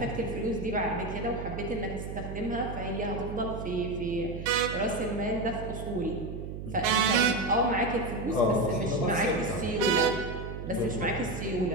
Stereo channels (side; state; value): right; noise; hum, 8 dB below the sound